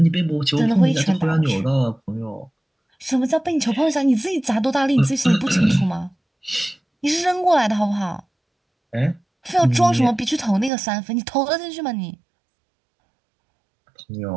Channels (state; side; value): drops out; left; at 10.7 s